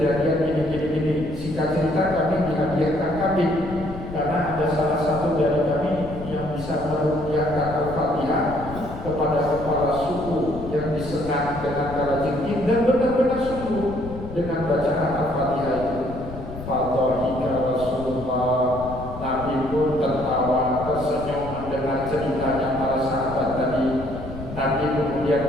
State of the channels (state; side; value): noise; left; rumble, 11 dB below the sound